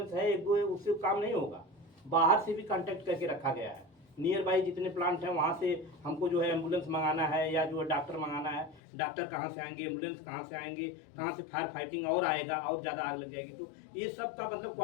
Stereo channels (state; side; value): drops out; right; at 8.8 s